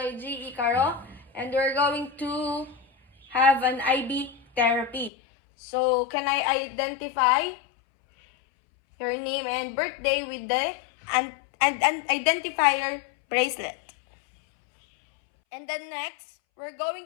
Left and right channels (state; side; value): drops out; right; at 5.1 s